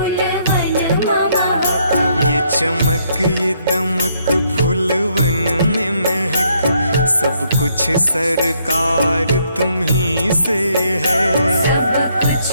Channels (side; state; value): both; inverted; correlation -0.71